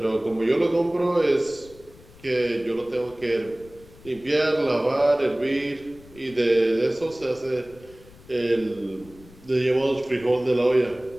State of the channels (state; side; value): noise; left; rumble, 23 dB below the sound